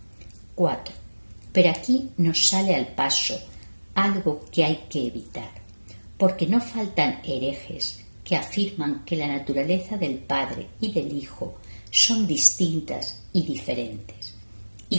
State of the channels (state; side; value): inverted; both; correlation -1.00